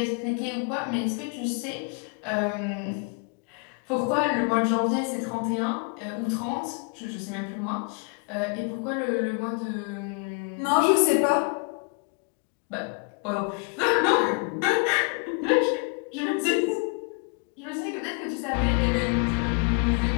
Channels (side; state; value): right; quieter; 37.1 dB